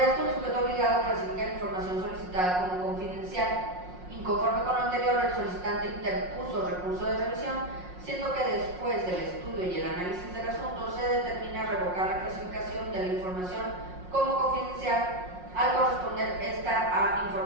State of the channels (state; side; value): late; left; 5.5 ms